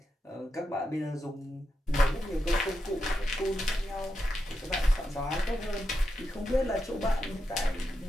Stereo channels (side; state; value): both; normal; correlation 0.86